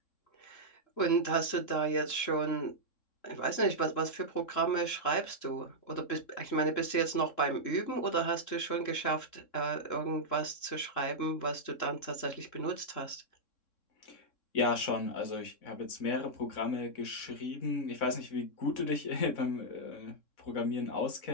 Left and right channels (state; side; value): late; right; 3.7 ms